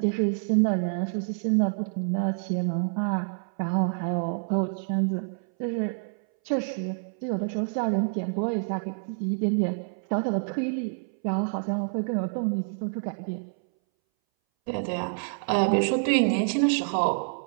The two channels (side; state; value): left; silent; 60 dB below the other